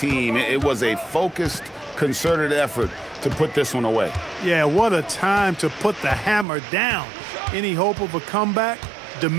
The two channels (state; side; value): drops out; left; at 6.5 s